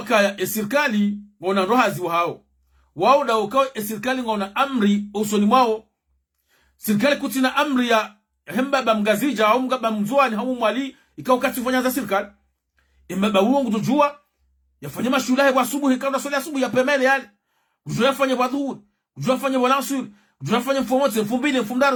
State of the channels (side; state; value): both; identical; correlation 1.00